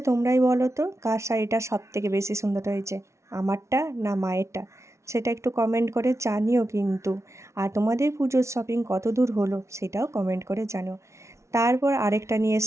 তোমরাই বলো তো কার শাড়িটা সব থেকে বেশি সুন্দর হয়েছে, আমারটা না মায়েরটা? সেটা একটু কমেন্ট করে জানিও কিন্তু। আর তোমাদের পুজোর শপিং কত দূর হলো সেটাও কমেন্ট করে জানিও। তারপর আরেকটা নিয়ে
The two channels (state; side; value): late; left; 0.13 ms